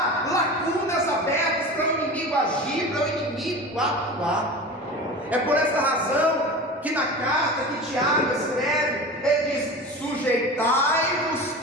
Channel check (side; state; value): both; normal; correlation 0.32